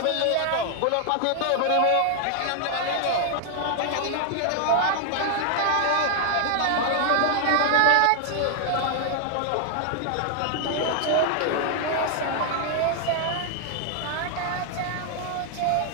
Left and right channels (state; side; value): different; both; correlation 0.00